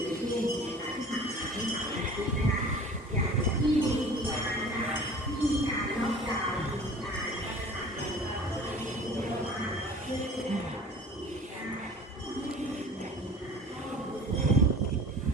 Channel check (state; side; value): normal; both; correlation 0.43